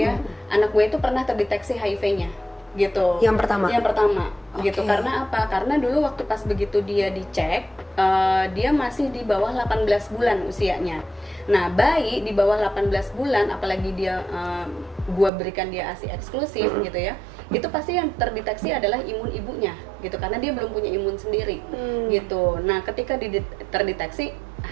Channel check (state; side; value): drops out; left; at 15.3 s